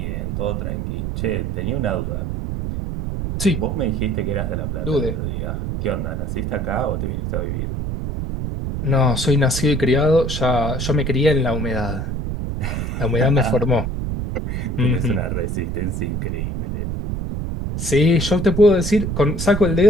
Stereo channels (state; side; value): noise; right; rumble, 3 dB below the sound